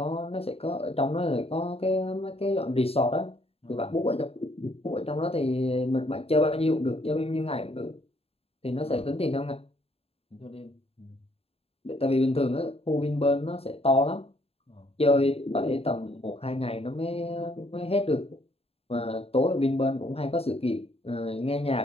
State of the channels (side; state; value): right; late; 0.29 ms